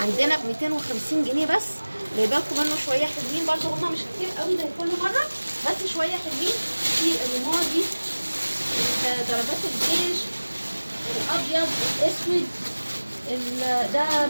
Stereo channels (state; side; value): inverted; both; correlation -1.00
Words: عندنا ب 250 جنيه بس. جايبه لكم منه شويه حلوين برده، هما مش كتير قوي زي كل مره بس شويه حلوين. في الرمادي، ضربات الجيش، الابيض، الاسود، ده